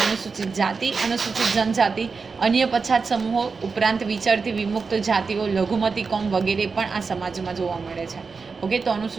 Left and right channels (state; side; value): quieter; left; 4.8 dB